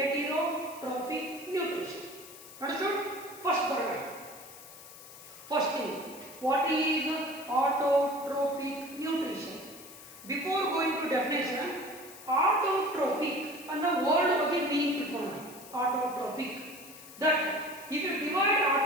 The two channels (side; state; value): left; noise; hiss, 17 dB below the sound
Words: nutrition. Understood? First paragraph. First thing, what is autotrophic nutrition? Before going to definition, autotrophic and the word ಬಗ್ಗೆ meaning ತಿಳ್ಕೊಳ್ಳೋಣ. Autotrophic, that if you divide